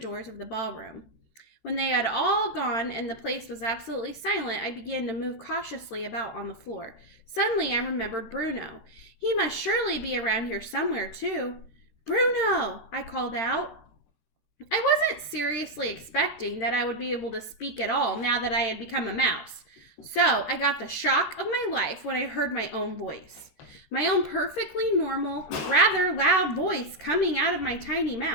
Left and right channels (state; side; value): late; right; 13 ms